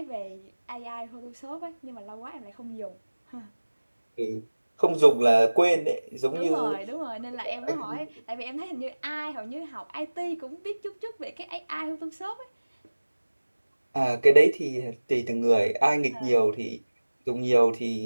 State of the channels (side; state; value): both; inverted; correlation -1.00